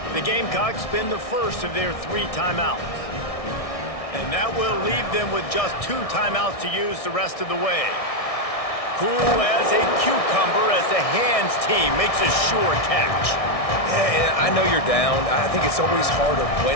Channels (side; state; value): right; late; 1.6 ms